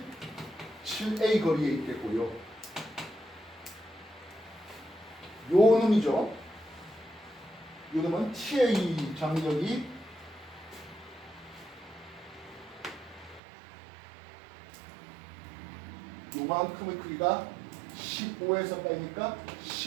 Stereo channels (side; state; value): left; drops out; at 13.4 s